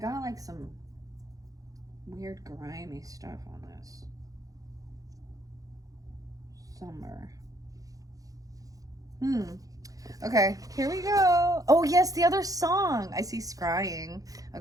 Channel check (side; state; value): left; late; 0.17 ms